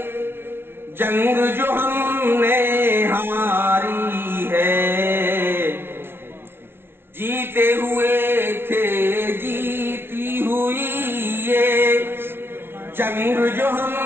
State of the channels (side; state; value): left; late; 0.11 ms